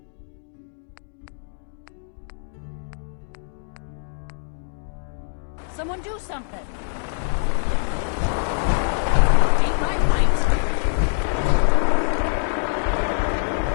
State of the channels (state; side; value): silent; right; digital silence